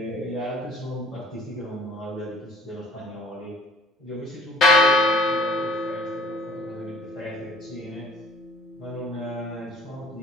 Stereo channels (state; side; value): normal; both; correlation 0.52